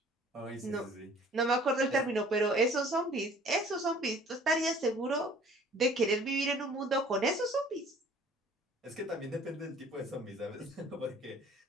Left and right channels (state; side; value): normal; both; correlation 0.52